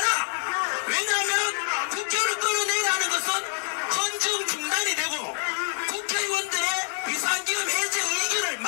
왜냐하면 국회의원을 끌어내라는 것은 헌정 중단이 되고 국회의원들의 비상기금 해제 의견을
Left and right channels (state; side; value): silent; right; 61 dB below the other